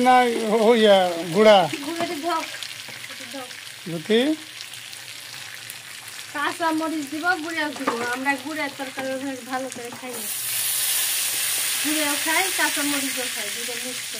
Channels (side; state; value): both; identical; correlation 1.00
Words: না হইয়া গুড়া গুঁড়োতে দাও যদি কাঁচা মরিচ দিব গুঁড়াও দিব আমরা গুঁড়ার তরকারি ভালো করে খাই না গুঁড়াও খাই কাঁচা মরিচও খাই দুটো মিক্স